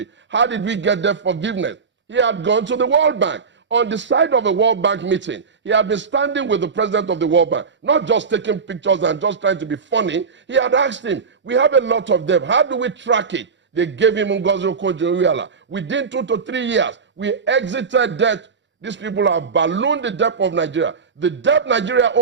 How did we get their forgiveness? He had gone to the World Bank. On the side of a World Bank meeting, he had been standing with the president of the World Bank, not just taking pictures and just trying to be funny. He had asked him, we have a lot of debt. How do we track it? They gave him Ngozi Okonjo-Iweala. Within 2 to 3 years, we exited debt. These people have ballooned the debt of Nigeria. The debt Nigeria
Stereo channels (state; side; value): quieter; left; 5.4 dB